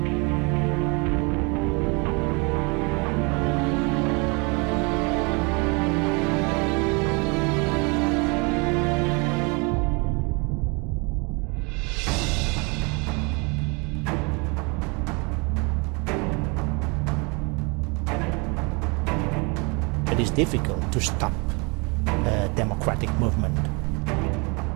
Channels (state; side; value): quieter; left; 30.4 dB